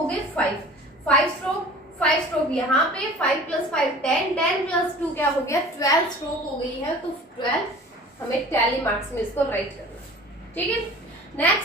गए 5 स्ट्रोक। 5 स्ट्रोक यहाँ पे, 5 + 5 10, 10 + 2 क्या हो गया 12 स्ट्रोक हो गई है। तो 12 हमें टैली मार्क्स में इसको राइट करना है। ठीक है,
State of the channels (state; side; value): normal; both; correlation 0.44